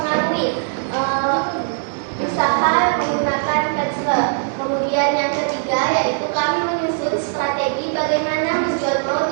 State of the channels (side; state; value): left; silent; 63 dB below the other